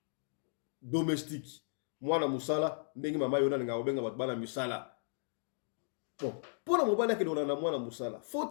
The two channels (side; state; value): right; silent; digital silence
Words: domestique. Moi na musala, ndengi mama yona nga obenga batbana musala. Bon, pour la mobile ke dona na mwana musala, faut